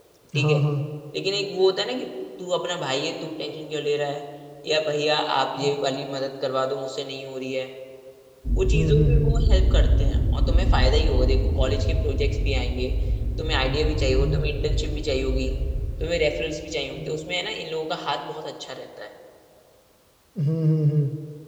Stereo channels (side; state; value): both; identical; correlation 1.00